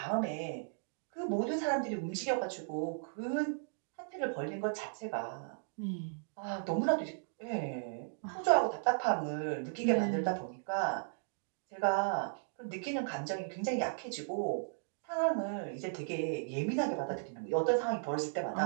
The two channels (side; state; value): left; silent; digital silence